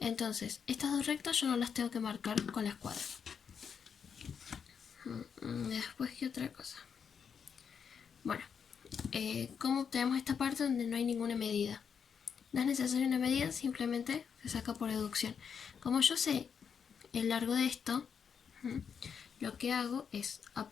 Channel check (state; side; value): quieter; right; 6.9 dB